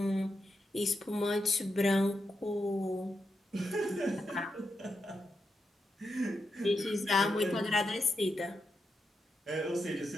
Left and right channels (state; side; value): normal; both; correlation 0.85